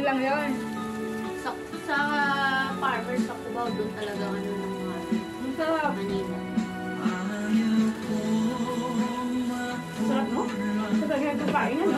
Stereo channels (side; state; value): both; identical; correlation 1.00